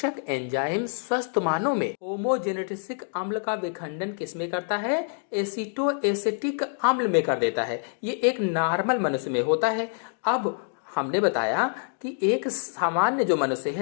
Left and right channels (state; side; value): silent; right; 61 dB below the other